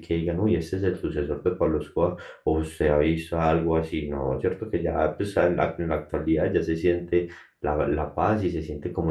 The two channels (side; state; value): both; identical; correlation 1.00